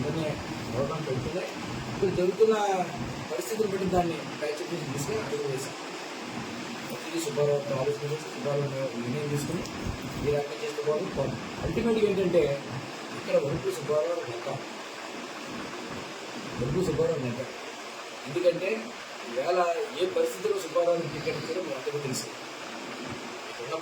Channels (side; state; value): both; identical; correlation 1.00